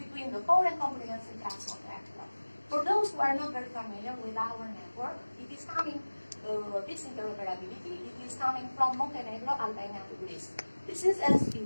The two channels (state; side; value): inverted; both; correlation -1.00